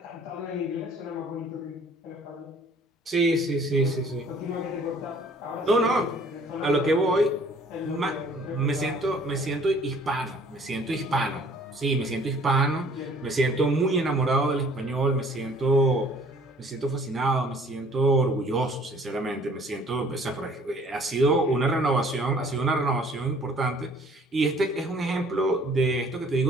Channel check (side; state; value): both; normal; correlation 0.55